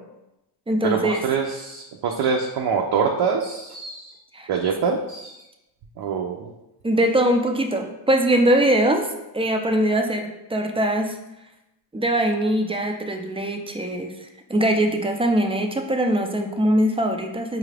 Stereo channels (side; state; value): both; normal; correlation 0.43